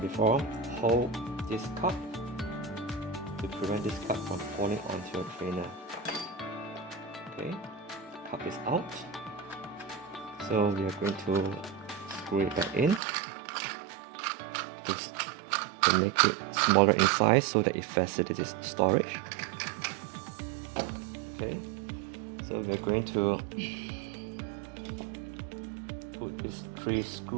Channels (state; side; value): drops out; left; at 13.0 s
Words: before, hold this cup to prevent this cup from falling onto your trainer. Okay, cup is out. So we are going to screw it back in to make it smaller in size so that it facilitates storage. Okay, so we're going to put these 3